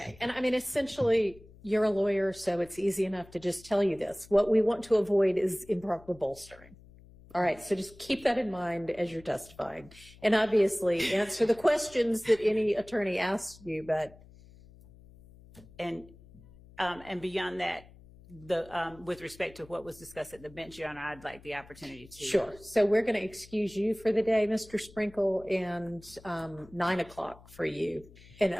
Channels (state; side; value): noise; left; hum, 22 dB below the sound